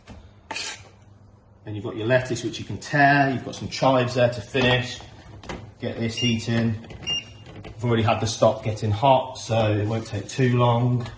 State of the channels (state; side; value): identical; both; correlation 1.00